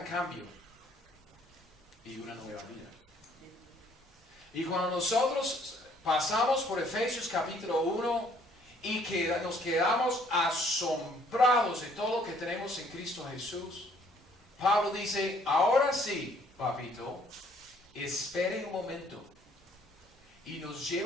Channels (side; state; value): both; normal; correlation 0.62